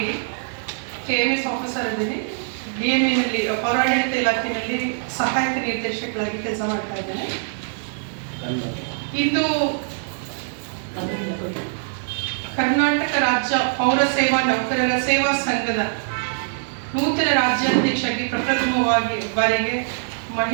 KMS ಆಫೀಸರ್ ಇದ್ದೀನಿ. DMEನಲ್ಲಿ ಪೌರಾಡಳಿತ ಇಲಾಖೆಯಲ್ಲಿ ಸಹಾಯಕ ನಿರ್ದೇಶಕರಾಗಿ ಕೆಲಸ ಮಾಡ್ತಾ ಇದ್ದೇನೆ. ಇಂದು ಕರ್ನಾಟಕ ರಾಜ್ಯ ಪೌರ ಸೇವಾ ನೌಕರರ ಸೇವಾ ಸಂಘದ ನೂತನ ರಾಜ್ಯಾಧ್ಯಕ್ಷರಾಗಿ ಪ್ರಪ್ರಥಮವಾಗಿ ಬಾರಿಗೆ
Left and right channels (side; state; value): left; silent; digital silence